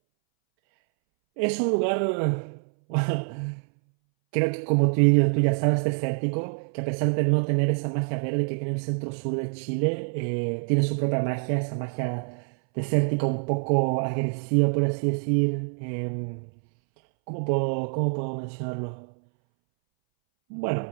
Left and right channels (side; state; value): left; silent; 61 dB below the other